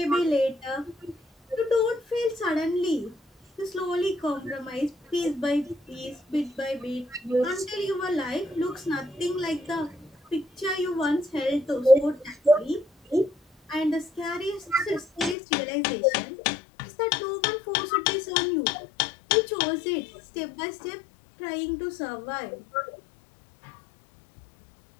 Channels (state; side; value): drops out; right; at 15.4 s